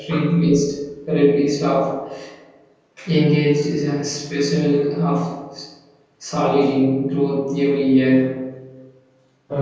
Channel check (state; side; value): identical; both; correlation 1.00